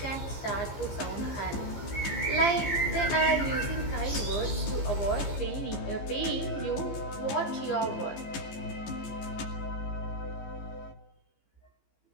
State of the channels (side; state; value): right; late; 15 ms